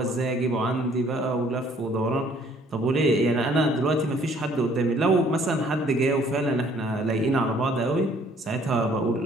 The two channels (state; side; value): normal; both; correlation 0.60